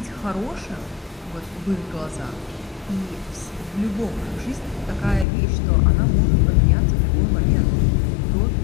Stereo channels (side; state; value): right; drops out; at 5.2 s